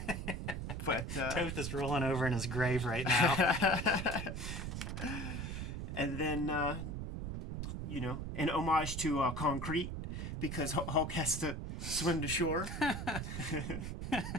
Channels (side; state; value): right; noise; rumble, 5 dB below the sound